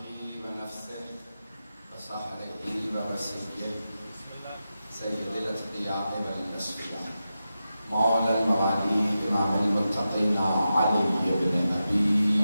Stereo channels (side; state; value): both; inverted; correlation -0.91